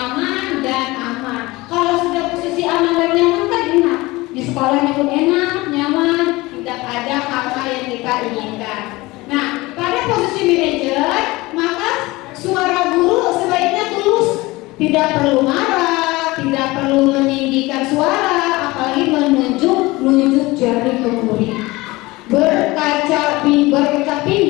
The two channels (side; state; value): right; quieter; 21.1 dB